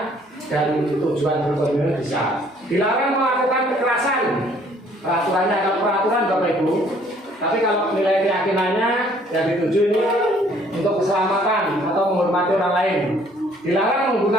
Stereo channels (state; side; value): normal; both; correlation 0.60